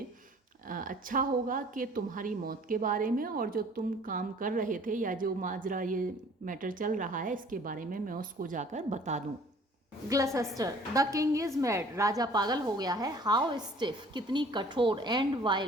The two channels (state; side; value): normal; both; correlation 0.53